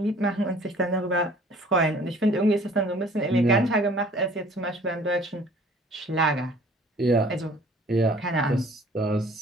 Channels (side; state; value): both; normal; correlation 0.53